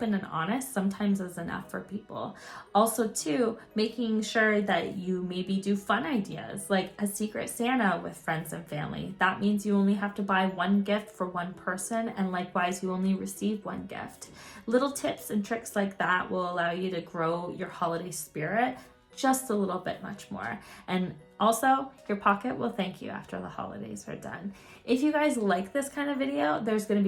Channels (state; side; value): identical; both; correlation 1.00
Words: and honest sometimes is enough for people. Also too, making sure that you maybe do fun ideas like a secret Santa with friends and family. That means you only have to buy one gift for one person, and likewise you only receive one gift. Little tips and tricks like that will allow you to grow your holiday spirit just a little bit much more. And also, your pocket will thank you after the holidays are done. If you guys like this kind of video, there's going